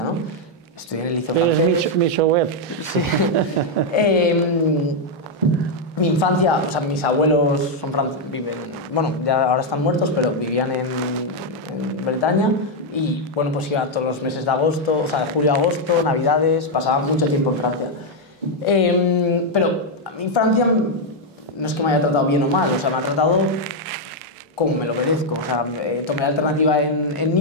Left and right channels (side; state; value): both; normal; correlation 0.00